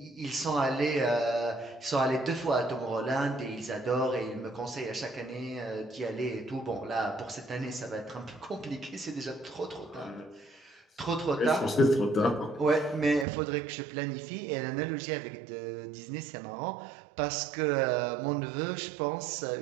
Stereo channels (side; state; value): left; drops out; at 13.2 s